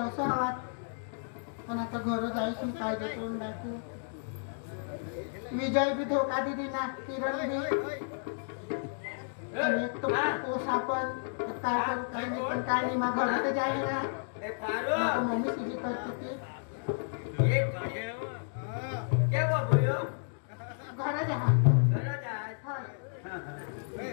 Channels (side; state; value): right; silent; digital silence